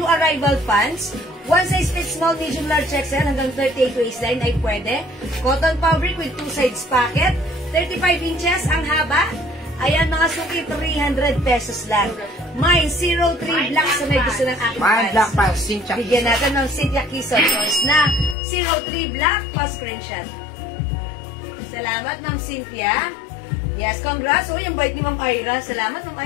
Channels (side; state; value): right; drops out; at 18.4 s